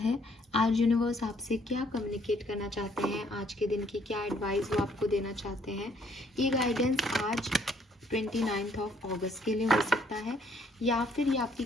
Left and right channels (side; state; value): both; normal; correlation 0.65